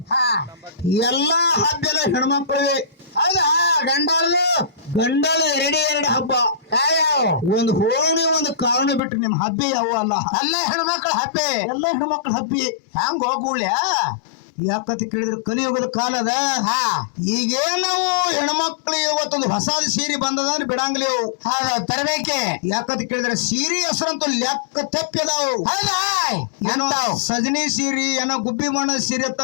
ಎಲ್ಲಾ ಹಬ್ಬ ಎಲ್ಲ ಹೆಣ್ಮಕ್ಳಿಗೆ. ಹೌದಾ? ಗಂಡಲು 2 ಹಬ್ಬ. ಒಂದು ಹೋಳಿ ಒಂದು ಕಾರಣ ಬಿಟ್ರೆ ನಿಮ್ ಹಬ್ಬ ಯಾವ ಅಲ್ಲ. ಎಲ್ಲ ಹೆಣ್ಮಕ್ಳ ಹಬ್ಬೆ. ಎಲ್ಲ ಹೆಣ್ಮಕ್ಳ ಹಬ್ಬಿ. ಹಂಗ ಹೋಗ್ಬಿಡ್ಯ ಯಾಕಂತ ಕೇಳಿದ್ರೆ ಕಲಿಯುಗದ ಕಾಲದ ಈಗೇನ್ ನಾವು ಹೆಣ್ಮಕ್ಳು ಇವತ್ತೊಂದು ಹೊಸ ಸೀರೆ ಬಂದದ ಅಂದ್ರೆ ಬಿಡಂಗ್ಲಿ ತರಬೇಕೆ. ಯಾಕಂತ ಕೇಳಿದ್ರೆ ಸೀರೆ ಹೆಸರಂತೂ ಲೆಕ್ಕ ತಪ್ಪಿದಾವು. ಏನೋ ಸಜನಿ ಸೀರೆ, ಏನೋ ಗುಬ್ಬಿ ಬಣ್ಣದ ಸೀರೆ ಅತ್ತ,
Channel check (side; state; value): right; drops out; at 9.0 s